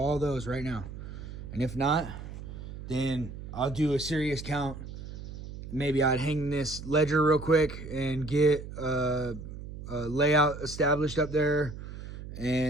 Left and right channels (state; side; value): noise; right; hum, 11 dB below the sound